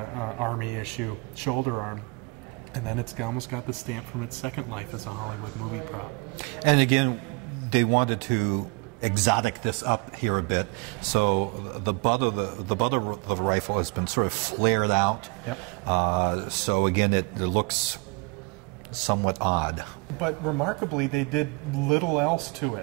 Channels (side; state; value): left; quieter; 29.2 dB